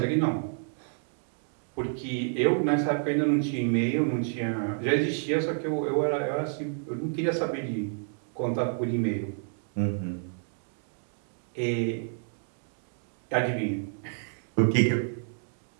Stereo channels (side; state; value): left; silent; digital silence